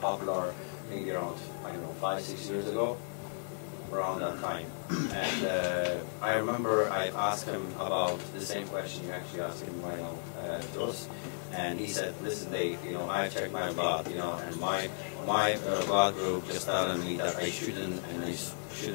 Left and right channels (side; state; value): right; silent; digital silence